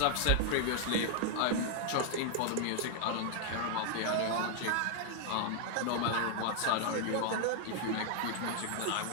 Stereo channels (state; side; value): different; both; correlation 0.00